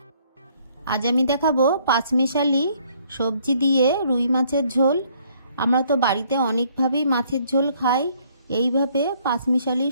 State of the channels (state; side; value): inverted; both; correlation -0.64